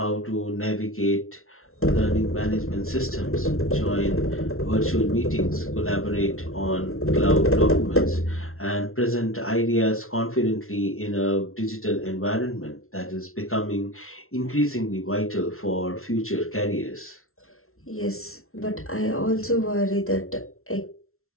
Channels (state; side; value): late; right; 0.62 ms